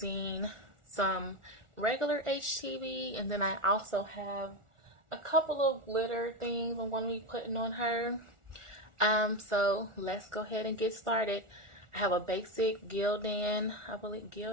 some regular HTV, and then I also have a couple of glitter things I'm going to be putting on her. So let's go ahead and get started. I have a basic Gildan,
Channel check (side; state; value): left; late; 1.4 ms